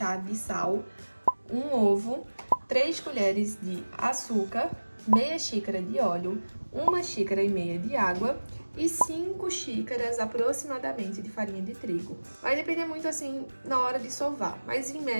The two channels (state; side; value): inverted; both; correlation -1.00